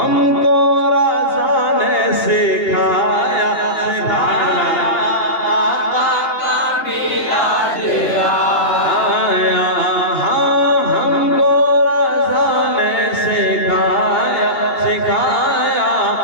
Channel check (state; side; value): late; right; 3.2 ms